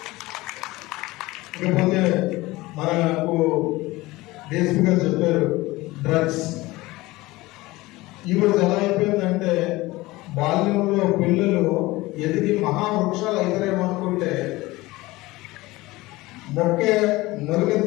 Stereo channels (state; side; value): quieter; right; 20.0 dB